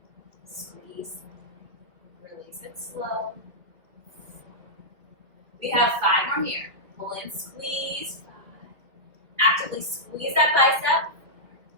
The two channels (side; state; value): left; late; 2.1 ms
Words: Squeeze. Release it slow. We have 5 more here. Pull in, squeeze. 5. Actively squeeze that bicep.